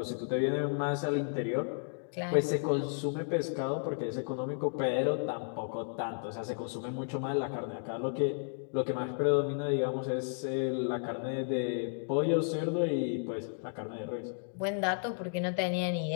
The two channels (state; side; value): silent; right; digital silence